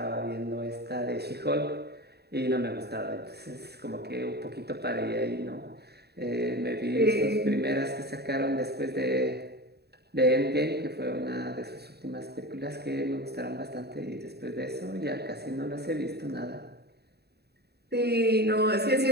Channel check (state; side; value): late; left; 0.47 ms